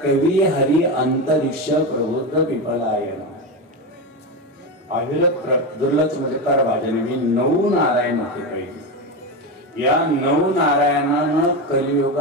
कवी हरी अंतरिक्ष प्रबुद्ध पिपलायन अविरत दुर्लक्ष म्हणजे कर भाजन. मी 9 नारायण होते पहिले. या 9 नारायणानं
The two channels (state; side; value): normal; both; correlation 0.16